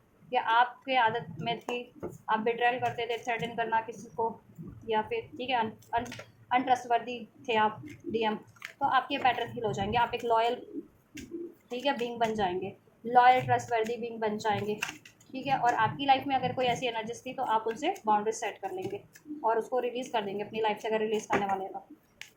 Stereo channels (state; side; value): identical; both; correlation 1.00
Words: या आपके आदत में थी आप बिट्रायल करते थे, थ्रेटन करना किसी को, या फिर ठीक है अनट्रस्टवर्दी थे आप, डीएम, तो आपके पैटर्न हील हो जाएंगे। आप एक लॉयल, ठीक है, बीइंग बन जाएंगे, लॉयल ट्रस्टवर्दी बीइंग बन जाएंगे। ठीक है, और आपकी लाइफ में अगर कोई ऐसी एनर्जीज थी तो आप उनसे बाउंड्रीज सेट कर लेंगे और उसको रिलीज़ कर देंगे अपनी लाइफ से, अगर रिलीज़ करने वाले हैं